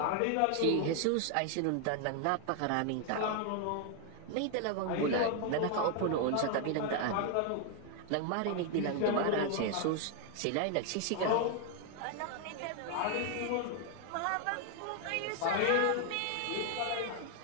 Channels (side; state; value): both; different; correlation 0.00